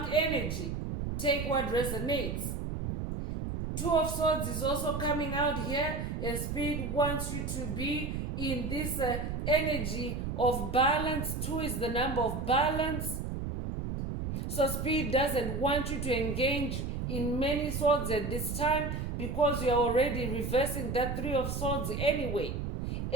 energy. Take what resonates. 2 of Swords is also coming out here, and Spirit wants you to be in this energy of balance. 2 is the number of balance. So Spirit doesn't want you to engage in many swords at this time, because you're already reversing that 3 of Swords anyway.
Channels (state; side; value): noise; right; rumble, 3 dB below the sound